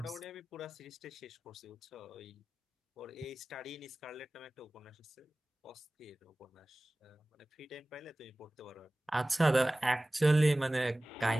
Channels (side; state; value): both; normal; correlation 0.98